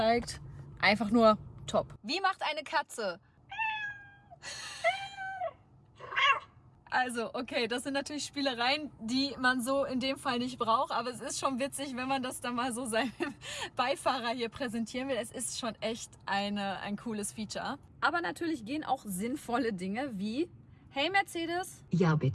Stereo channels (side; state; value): both; identical; correlation 1.00